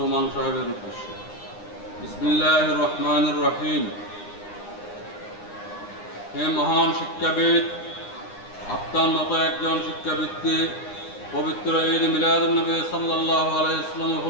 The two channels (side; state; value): right; late; 9.8 ms